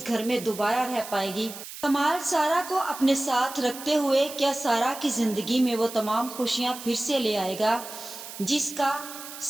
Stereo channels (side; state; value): right; noise; hiss, 12 dB below the sound